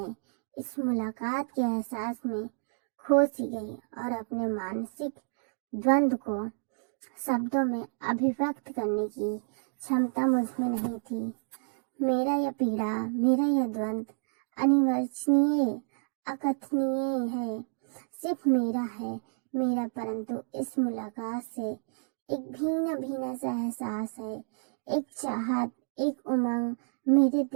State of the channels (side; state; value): left; silent; digital silence